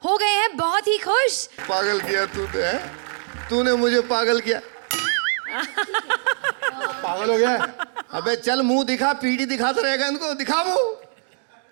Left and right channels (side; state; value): left; silent; digital silence